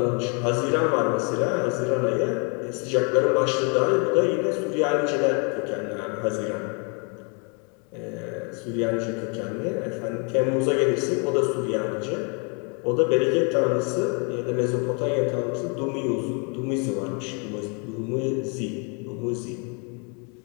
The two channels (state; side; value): quieter; right; 36.0 dB